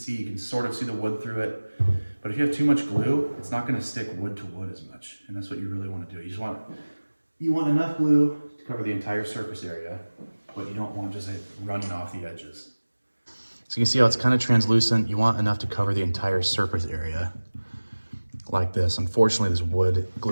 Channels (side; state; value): both; inverted; correlation -1.00